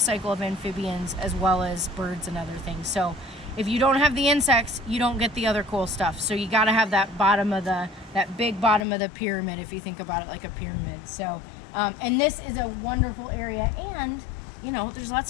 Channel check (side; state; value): right; drops out; at 8.8 s